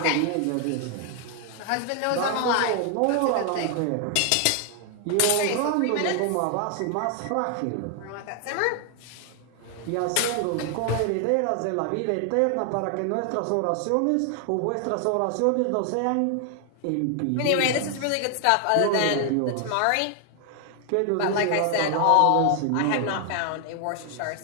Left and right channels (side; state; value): both; different; correlation 0.00